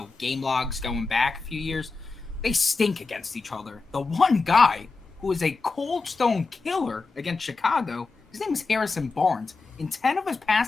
game logs going back a few years. They stink against each other. The one guy who is a cold stone killer against Chicago, his name is Harrison Barnes. In 10 of his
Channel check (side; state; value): right; quieter; 4.1 dB